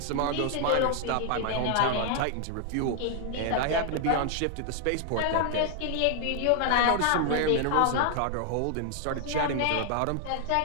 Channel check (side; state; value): both; different; correlation 0.00